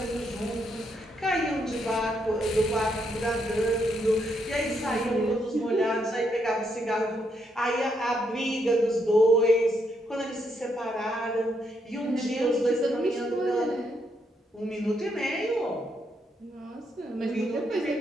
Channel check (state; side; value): normal; both; correlation 0.77